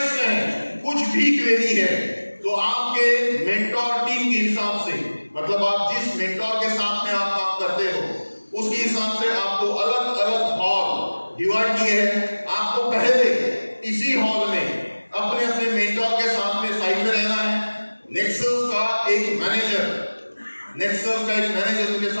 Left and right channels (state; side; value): inverted; both; correlation -1.00